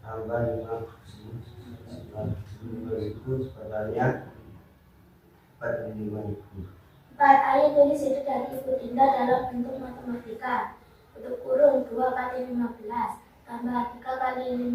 tambah 5.000 totalnya 45.000. 4. Ayo tulis ide dari Ibu Dinda dalam bentuk matematika. Untuk kurung 2 kali 15 tambah 3 kali 5.000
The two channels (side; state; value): both; identical; correlation 1.00